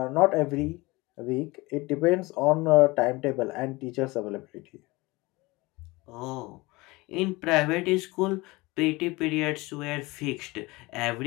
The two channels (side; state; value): right; quieter; 22.6 dB